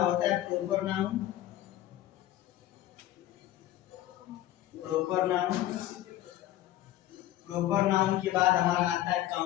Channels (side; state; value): right; quieter; 14.0 dB